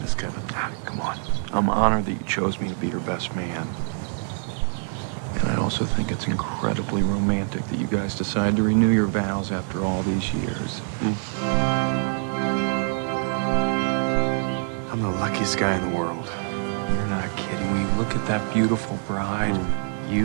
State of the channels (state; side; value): silent; left; 59 dB below the other